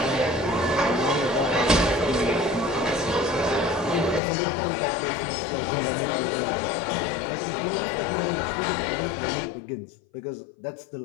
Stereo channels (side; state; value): right; drops out; at 4.2 s